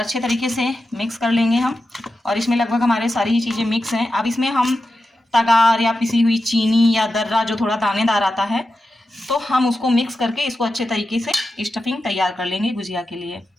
तरीके से मिक्स कर लेंगे हम। और इसमें लगभग हमारे सारी ही चीज़ें मिक्स हैं। अब इसमें हम तगार या पिसी हुई चीनी या दर्रा जो थोड़ा दानेदार आता है, तो हम उसको मिक्स करके इसको अच्छे तरीके से स्टफिंग तैयार कर लेंगे गुजिया के लिए।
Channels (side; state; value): both; normal; correlation 0.91